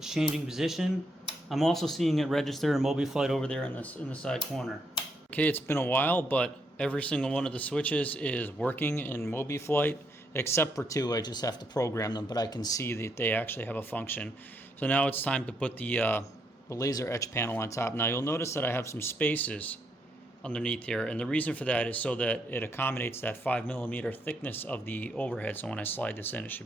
changing position. I'm also seeing it register in MobiFlight over there in the side corner. Okay, it's been a while, but every single one of the switches is working in MobiFlight, except for two. I just have to program them, but I can see that they actually have a function. So now it's time to put the laser etch panel on top. Now you'll notice that I have some spaces underneath here, and the reason for that is so that it accommodates that 5mm thickness of the overhead. So when I slide this in, it should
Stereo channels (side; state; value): both; normal; correlation 0.76